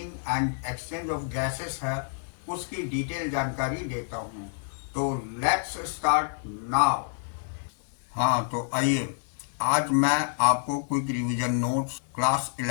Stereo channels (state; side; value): silent; right; digital silence